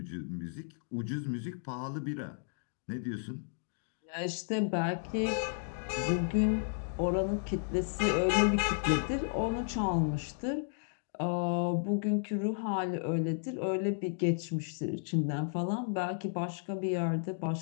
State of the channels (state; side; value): silent; right; digital silence